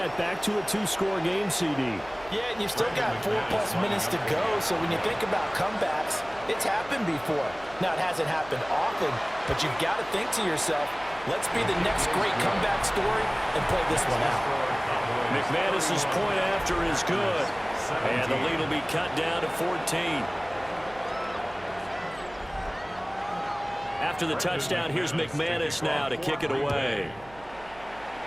Back to a 2-score game, CD. Yeah, and you've still got 4+ minutes to go, so when you think about comebacks, it's happened before. Now, it hasn't happened often, but you've got to think to yourself, let's be the next great comeback story and play this one out. McManus's point after is good, and the lead will be cut down to 14. After the touchdown, here's McManus now to kick it away.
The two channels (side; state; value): right; noise; hum, 22 dB below the sound